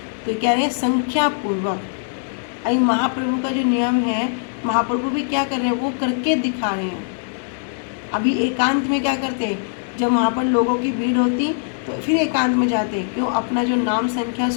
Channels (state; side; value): silent; right; digital silence